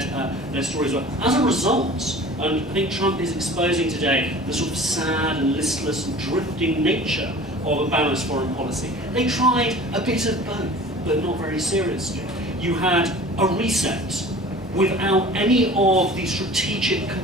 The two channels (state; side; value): normal; both; correlation 0.42